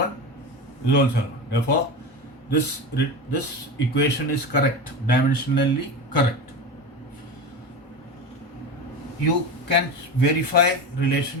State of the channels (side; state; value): both; normal; correlation 0.24